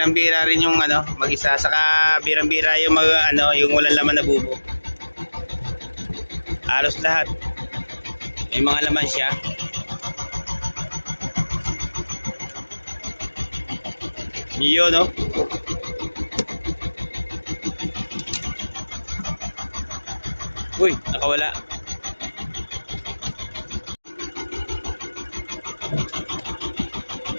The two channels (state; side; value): inverted; both; correlation -1.00